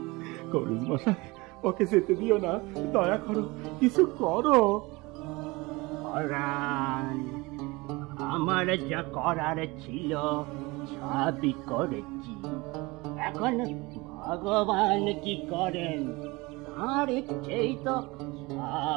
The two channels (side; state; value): left; quieter; 23.6 dB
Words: ওকে যেতে দিও না, দয়া করো, কিছু করো। আমার যা করার ছিল সবই করেছি, এখন ভগবান কি করেন তার ইচ্ছেই তো